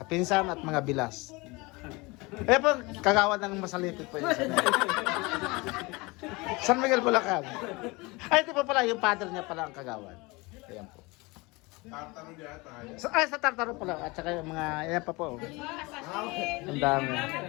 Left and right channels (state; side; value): quieter; right; 24.7 dB